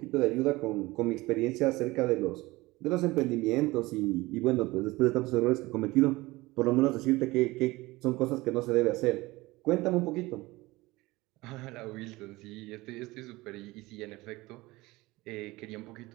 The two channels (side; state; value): left; quieter; 20.5 dB